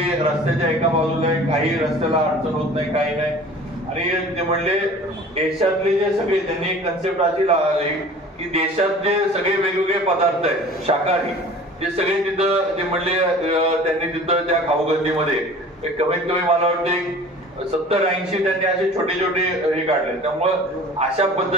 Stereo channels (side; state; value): both; normal; correlation 0.44